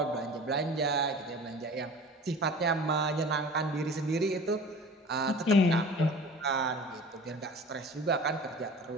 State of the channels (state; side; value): normal; both; correlation 0.41